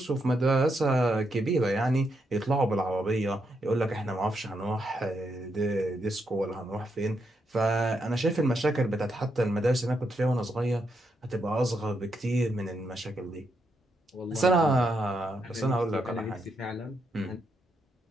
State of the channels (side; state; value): both; normal; correlation 0.80